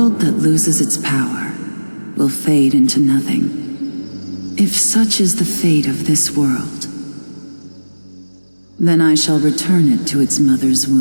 that loses its power will fade into nothing. If such is the fate of this world, then I shall return it to its mother's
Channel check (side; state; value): both; inverted; correlation -1.00